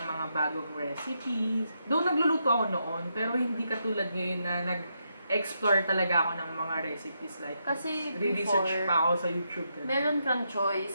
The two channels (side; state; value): both; inverted; correlation -0.81